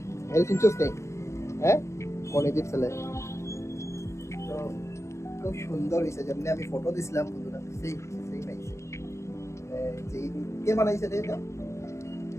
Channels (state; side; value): late; right; 0.14 ms